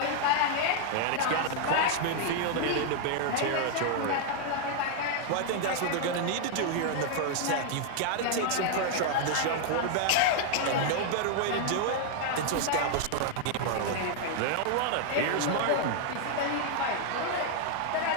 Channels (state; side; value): different; both; correlation 0.00